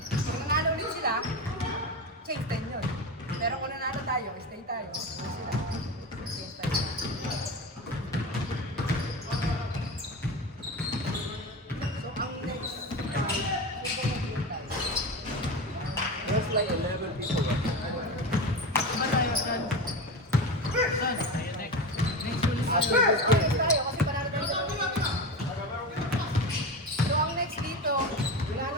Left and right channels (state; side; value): normal; both; correlation 0.24